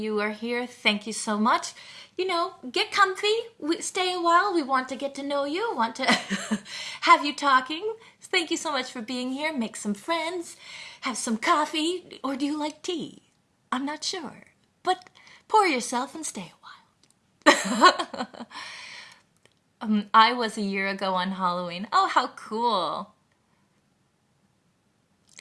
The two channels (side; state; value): both; identical; correlation 1.00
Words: are here. Thank you so much. Get comfy. Stay a while. We want to get to know you. Want to have you talking. Thank you so much for being here. Make some friends. Have some coffee. Or do you like tea? I'm not sure. But pour yourself and stay a while. I was a year ago on Halloween. Oh, how cool.